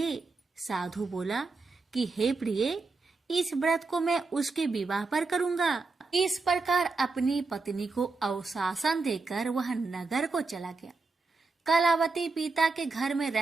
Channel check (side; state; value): left; quieter; 3.9 dB